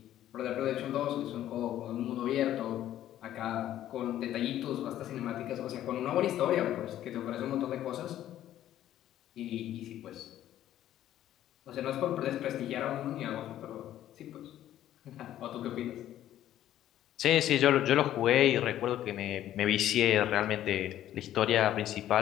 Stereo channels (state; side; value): quieter; right; 12.4 dB